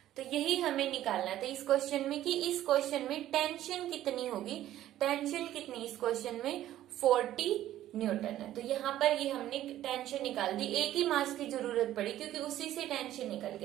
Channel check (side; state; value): left; quieter; 13.2 dB